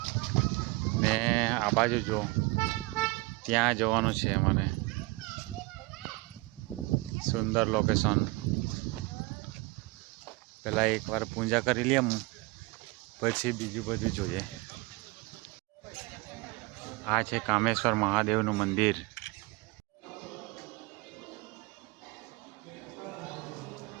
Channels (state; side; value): quieter; left; 23.5 dB